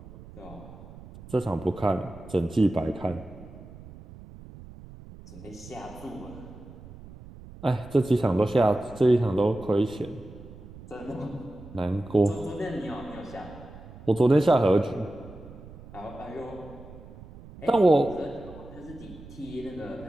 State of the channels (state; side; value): noise; right; rumble, 17 dB below the sound